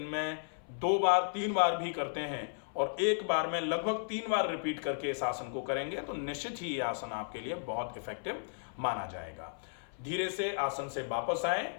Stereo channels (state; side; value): silent; right; 55 dB below the other